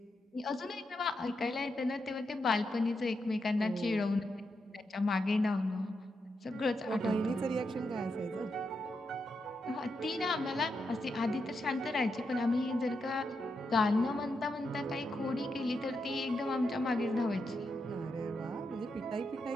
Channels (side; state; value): both; normal; correlation 0.84